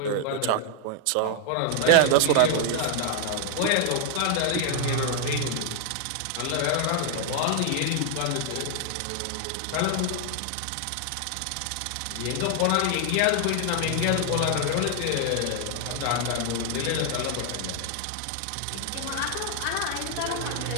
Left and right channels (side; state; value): both; different; correlation 0.00